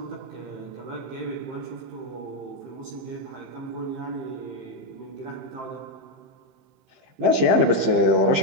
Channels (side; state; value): left; late; 15 ms